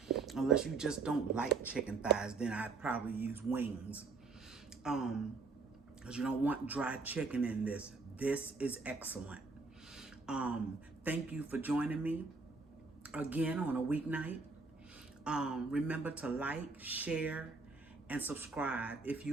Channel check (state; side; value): quieter; left; 4.2 dB